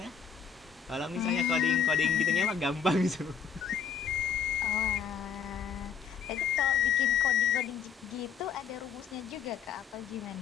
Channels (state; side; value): quieter; right; 7.0 dB